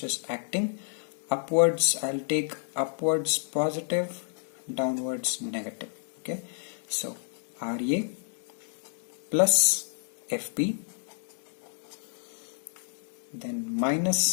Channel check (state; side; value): silent; right; digital silence